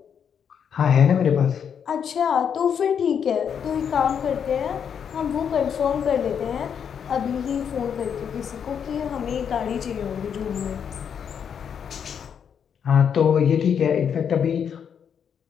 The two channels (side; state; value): right; quieter; 7.7 dB